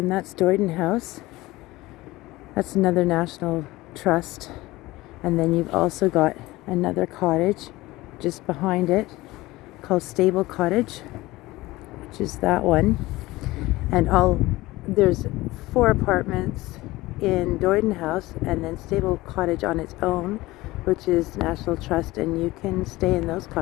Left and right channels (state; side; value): quieter; right; 19.2 dB